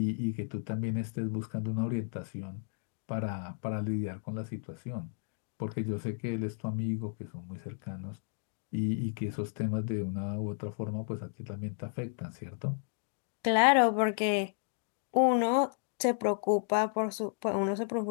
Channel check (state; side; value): silent; right; digital silence